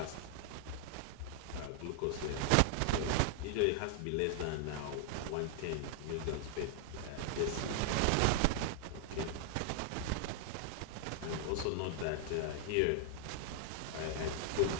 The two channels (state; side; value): different; both; correlation 0.00